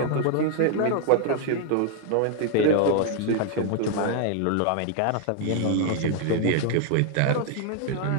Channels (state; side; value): different; both; correlation 0.00